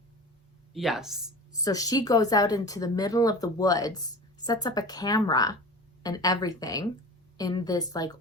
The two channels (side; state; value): both; normal; correlation 0.35